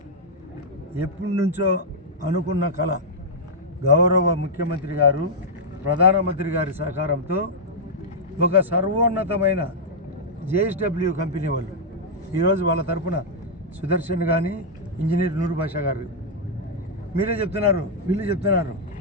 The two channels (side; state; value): both; normal; correlation -0.07